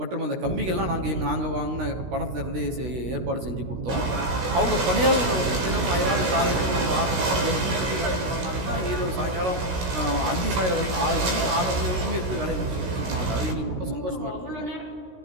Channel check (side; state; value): left; late; 16 ms